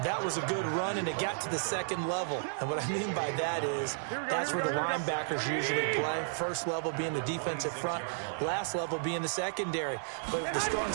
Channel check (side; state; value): left; silent; digital silence